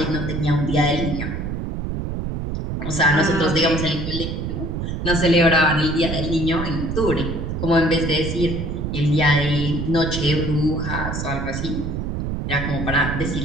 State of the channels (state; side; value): noise; right; rumble, 4 dB below the sound